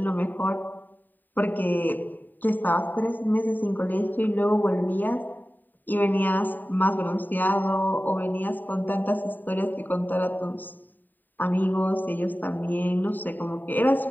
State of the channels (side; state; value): right; late; 0.089 ms